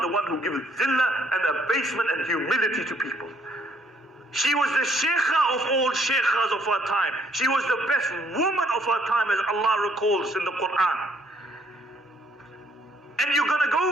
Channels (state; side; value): normal; both; correlation 0.66